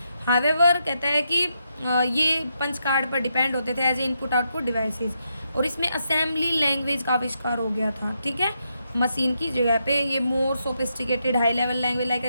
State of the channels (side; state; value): both; inverted; correlation -0.81